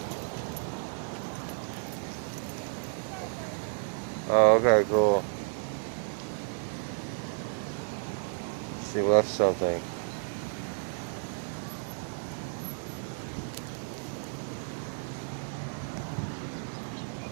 Oh, okay, cool. She left something.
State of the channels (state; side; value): silent; left; 56 dB below the other